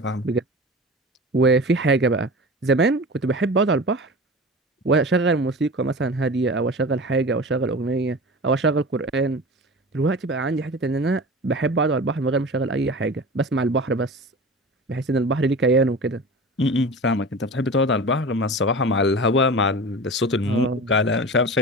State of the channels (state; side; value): normal; both; correlation 0.34